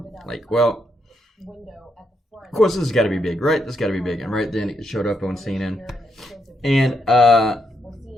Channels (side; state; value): both; normal; correlation 0.79